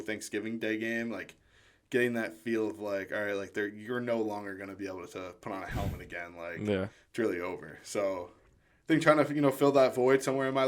Thanksgiving Day game, like getting that feel of like, all right, like you're no longer going to be able to put on a helmet again. Like, It's really over. So I think trying to, fill that void somewhere in my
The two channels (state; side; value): identical; both; correlation 1.00